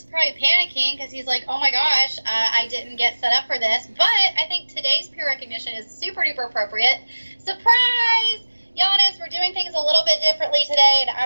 probably panicking because he's like, oh my gosh, I didn't get set up for this. But I think today's peer recognition is super duper appropriate. Surprise! Giannis, we're doing things a little bit differently today, and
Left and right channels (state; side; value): inverted; both; correlation -1.00